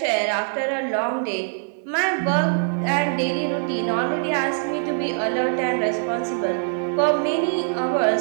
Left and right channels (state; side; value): silent; left; digital silence